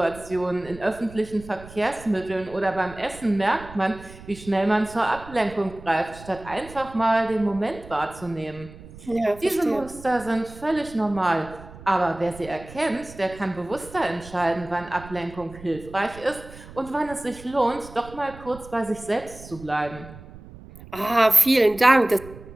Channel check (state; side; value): noise; right; rumble, 17 dB below the sound